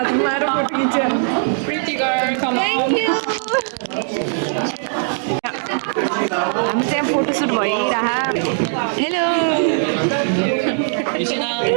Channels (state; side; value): silent; left; digital silence